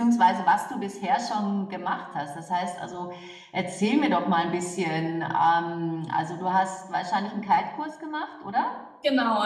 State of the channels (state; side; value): identical; both; correlation 1.00